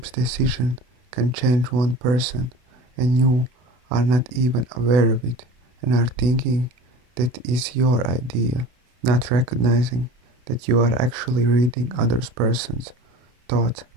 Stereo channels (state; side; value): late; left; 32 ms